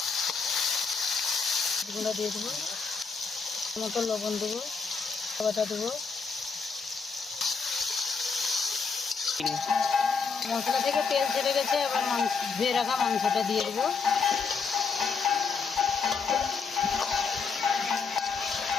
গুঁড়া দিয়ে দেবো, মতো লবণ দেবো, বাটা দেবো। মশলা থেকে তেল ছেড়ে গেছে, এবার ধুয়ে রাখা মাংসটা দিয়ে দেবো।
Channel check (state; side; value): quieter; right; 5.1 dB